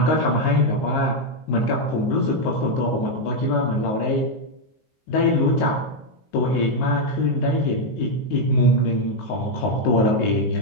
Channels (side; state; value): right; late; 19 ms